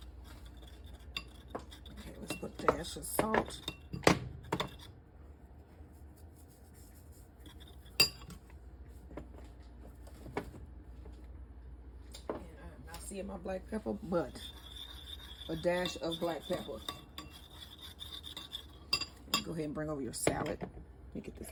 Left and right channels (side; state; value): both; identical; correlation 1.00